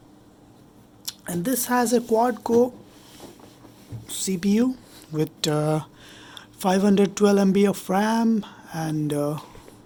And this has a quad-core CPU with 512 MB of RAM and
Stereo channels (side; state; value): both; identical; correlation 1.00